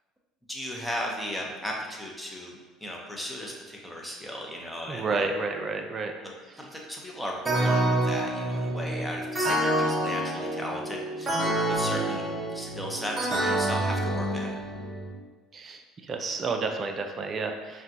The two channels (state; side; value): normal; both; correlation 0.64